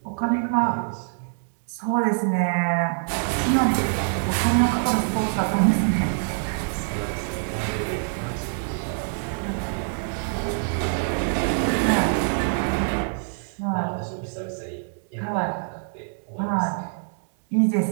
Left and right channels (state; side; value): silent; left; digital silence